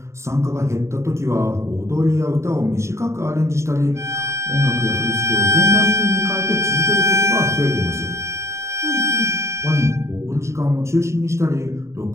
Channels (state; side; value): late; left; 0.14 ms